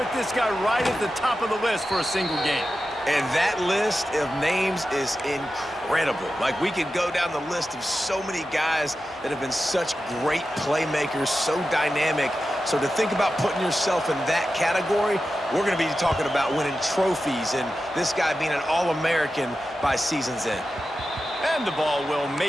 this guy right at the top of the list for a single game. And that list of names is incredible. Like, we could go down the list of so many guys that have been such great playmakers, so dynamic. So to think about putting yourself in that category, we're going to be talking about winning trophies and this guy being an All-American by season's end. And the ball will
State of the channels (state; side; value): normal; both; correlation 0.92